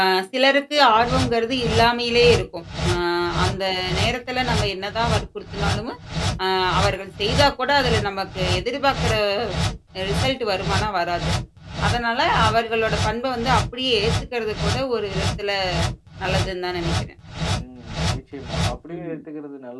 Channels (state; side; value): identical; both; correlation 1.00